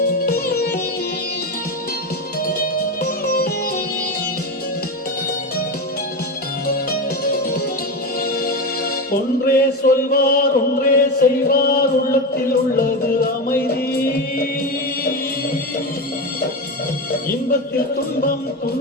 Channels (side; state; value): both; normal; correlation 0.18